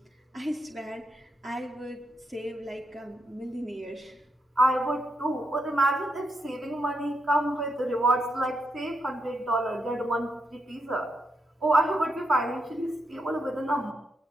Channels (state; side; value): normal; both; correlation 0.82